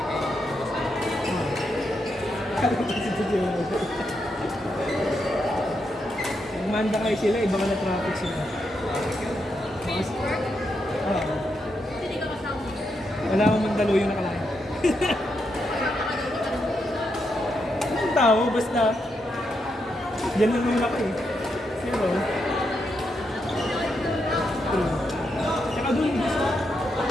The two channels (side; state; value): both; normal; correlation 0.82